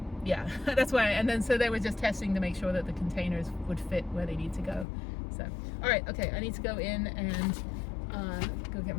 yeah, that's why. And then so they were just testing to make sure that the containers would fit where they need to go. So all right, okay, I need to go in and go get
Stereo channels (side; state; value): right; drops out; at 4.9 s